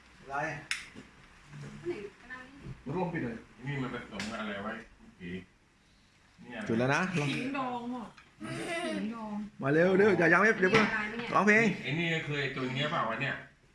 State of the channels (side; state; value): both; identical; correlation 1.00